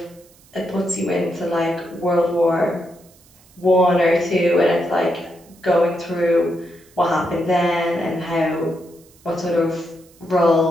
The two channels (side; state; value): right; noise; hiss, 28 dB below the sound